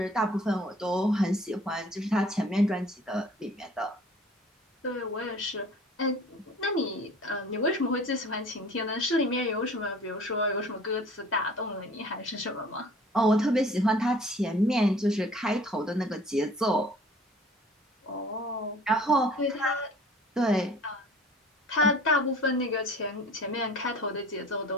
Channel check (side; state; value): both; normal; correlation 0.48